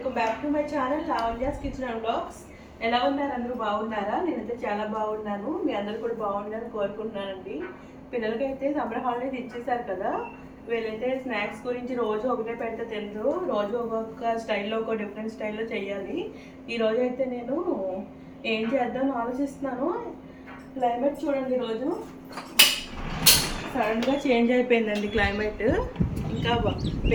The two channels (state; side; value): identical; both; correlation 1.00